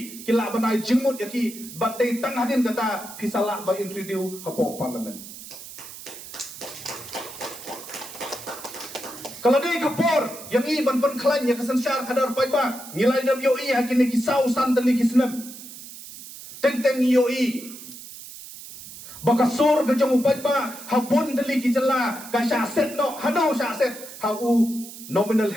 kila banai jingmut yaki batai tang hadin kata pisala ba introduce hapo parliament kalau dia kapor yang i ban klan ya kasensyar kadar paiba ngilai dam yo i hakini kisau santali kisnam teng yo i bakasur ke jong paiba habun dali kijala ka syaset no hado syaset hau nominal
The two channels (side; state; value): right; noise; hiss, 14 dB below the sound